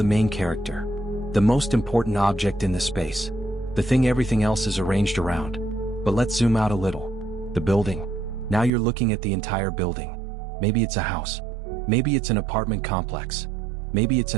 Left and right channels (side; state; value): left; drops out; at 8.7 s